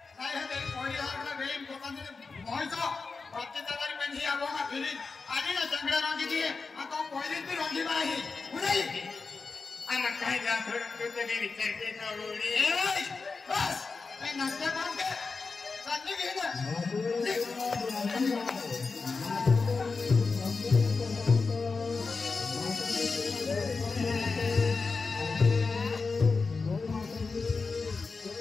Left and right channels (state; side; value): quieter; right; 4.4 dB